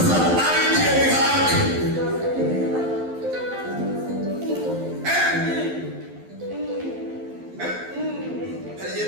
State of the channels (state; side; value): late; left; 12 ms